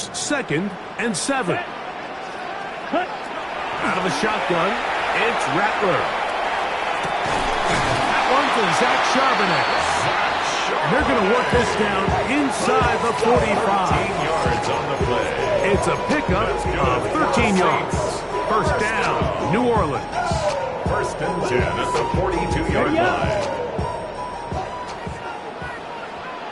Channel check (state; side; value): identical; both; correlation 1.00